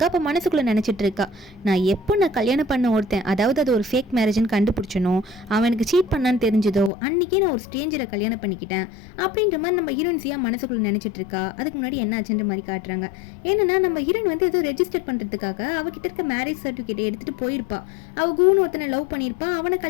அப்போ மனசுக்குள்ளே நினச்சிட்டு இருக்கா, நான் கல்யாணம் பண்ண ஒருத்தன், அதாவது அது ஒரு ஃபேக் மேரேஜ்னு கண்டுபிடிச்சனோ, அவனுக்கு சீட் பண்ணான்னு தெரிஞ்சதோ அன்றைக்கே நான் ஒரு ஸ்ட்ரேஞ்சரை கல்யாணம் பண்ணிக்கிட்டேன் அப்படின்ற மாதிரி நம்ம ஹீரோயின்ஸியாக மனசுக்குள்ள நினைச்சிட்டு இருக்கா. அதுக்கு முன்னாடி என்ன ஆச்சுன்ற மாதிரி காட்டுறாங்க. என்னன்னா நம்ம ஹீரோயின் வந்து ஏதோ ரெஜிஸ்டர் பண்றதுக்காக அவகிட்ட இருக்க மேரேஜ் சர்டிஃபிகேட் எடுத்துட்டு போயிருப்பா. அவ கூன்னு ஒருத்தனை லவ் பண்ணியிருப்பா, அவனை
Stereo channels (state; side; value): drops out; right; at 6.9 s